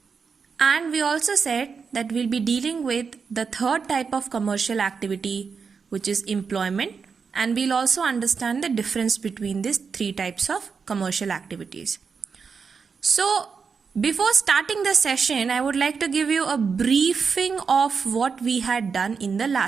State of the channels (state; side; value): quieter; left; 5.6 dB